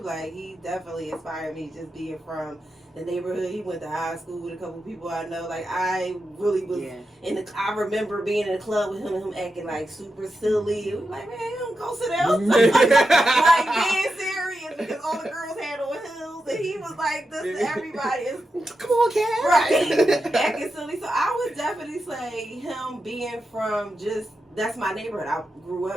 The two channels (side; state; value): both; normal; correlation 0.88